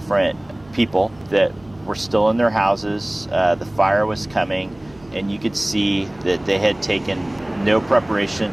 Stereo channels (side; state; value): right; noise; hum, 26 dB below the sound